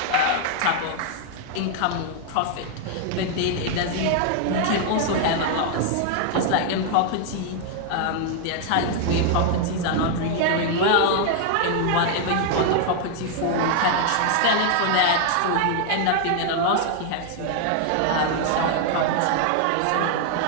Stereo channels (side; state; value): both; different; correlation 0.00